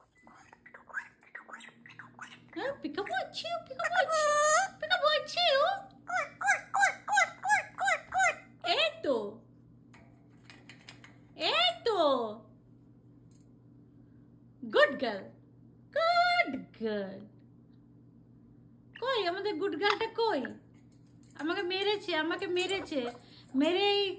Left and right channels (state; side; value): identical; both; correlation 1.00